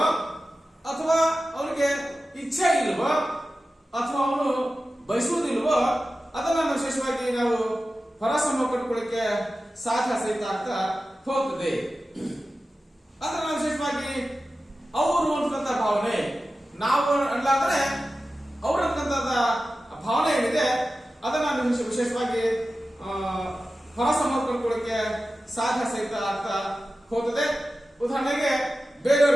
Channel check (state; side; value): normal; both; correlation 0.94